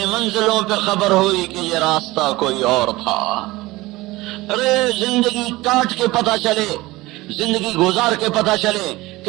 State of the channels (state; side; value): quieter; left; 19.8 dB